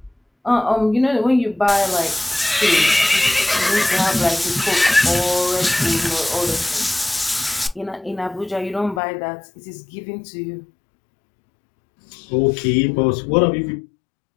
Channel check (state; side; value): drops out; right; at 9.0 s